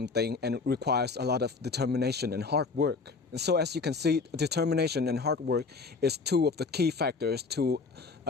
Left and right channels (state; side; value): quieter; right; 4.4 dB